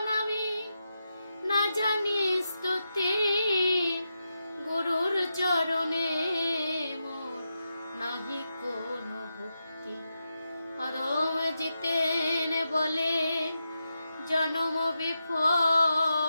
আমি না জানি স্তুতি গুরুর চরণে মোর নাহি কোনো ভক্তি। অধম জিতেন বলে জন্ম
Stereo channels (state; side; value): inverted; both; correlation -0.87